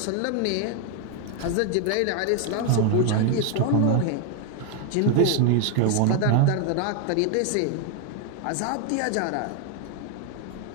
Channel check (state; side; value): different; both; correlation 0.01